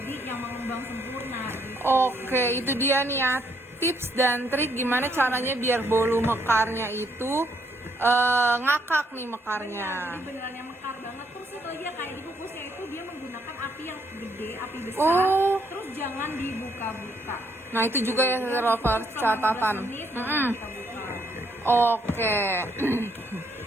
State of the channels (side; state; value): both; normal; correlation 0.72